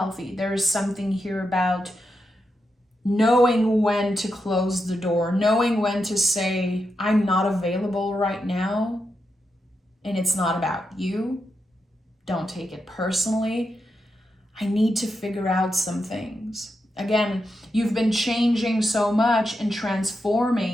There is something here about knowing when to close the door, knowing when to say, I'm not available right now, and it's not about you. Don't take it personally. I need to figure out some things. Again, you've been changing so much and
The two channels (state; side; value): normal; both; correlation 0.86